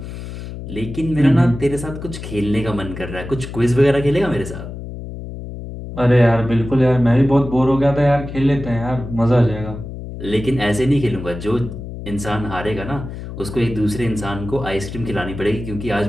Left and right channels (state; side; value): noise; left; hum, 10 dB below the sound